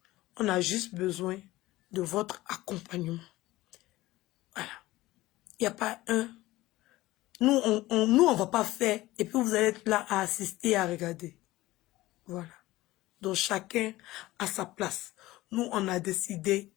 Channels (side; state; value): right; quieter; 17.9 dB